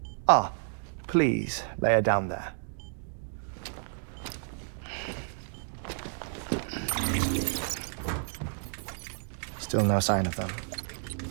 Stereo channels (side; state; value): left; silent; 57 dB below the other